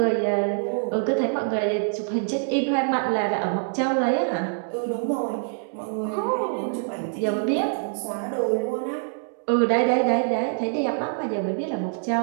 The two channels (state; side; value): silent; left; 62 dB below the other